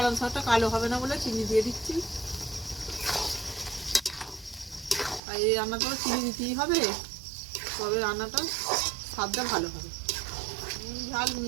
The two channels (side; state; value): left; drops out; at 5.2 s